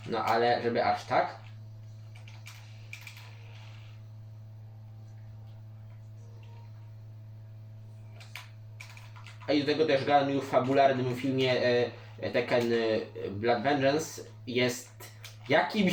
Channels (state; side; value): identical; both; correlation 1.00